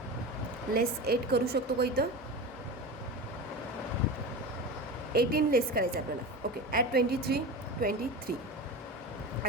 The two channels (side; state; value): both; normal; correlation 0.28